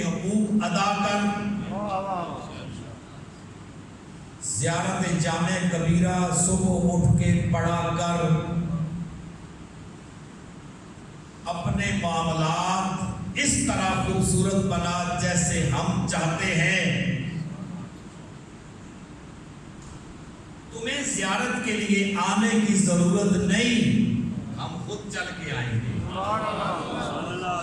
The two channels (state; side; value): identical; both; correlation 1.00